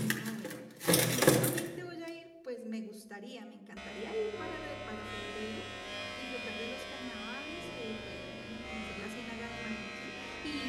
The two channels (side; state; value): both; identical; correlation 1.00